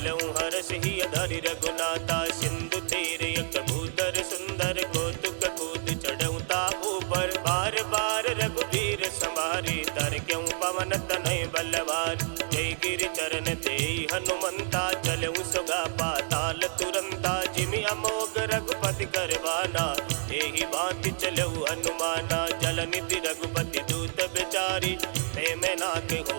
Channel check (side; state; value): left; silent; digital silence